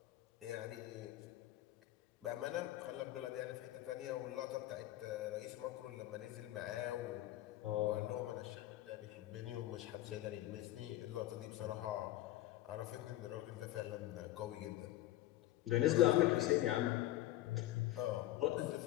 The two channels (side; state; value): right; quieter; 15.0 dB